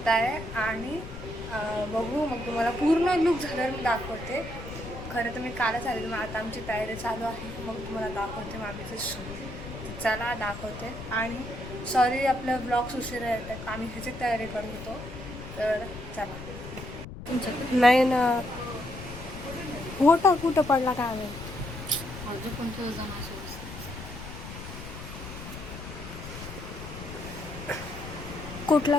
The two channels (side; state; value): left; noise; rumble, 11 dB below the sound